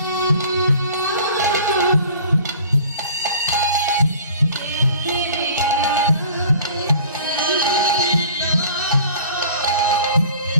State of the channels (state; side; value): inverted; both; correlation -0.47